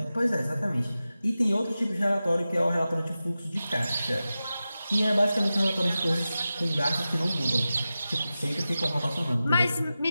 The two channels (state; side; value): inverted; both; correlation -0.94